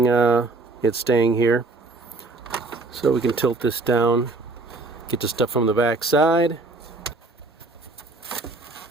it's staying here, so we can tilt this down, get the stuff from the back side.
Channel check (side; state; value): left; quieter; 3.3 dB